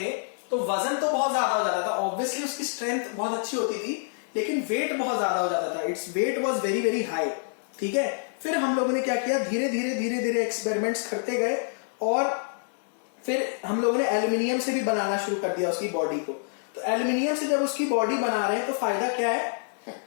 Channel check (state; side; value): silent; right; digital silence